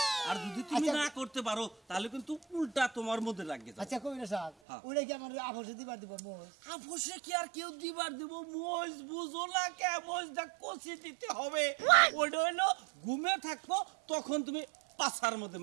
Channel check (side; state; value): left; drops out; at 4.5 s